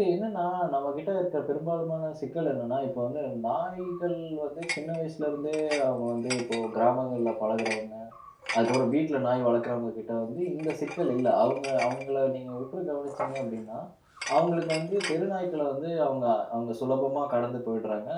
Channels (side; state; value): both; identical; correlation 1.00